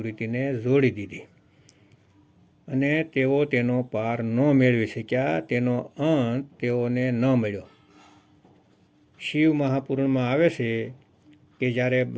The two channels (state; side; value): identical; both; correlation 1.00